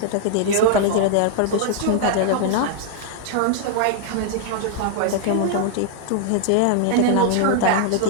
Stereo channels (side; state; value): both; different; correlation 0.00